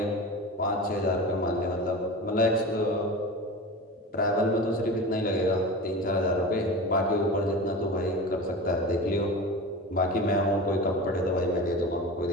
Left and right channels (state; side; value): normal; both; correlation 0.30